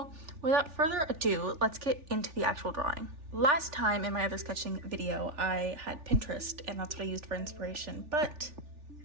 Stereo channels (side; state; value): left; late; 3.4 ms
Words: without further ado, let's get into the actual drawing. Last time in my other sketching video, I had Pinterest, and that's what I used for inspiration. But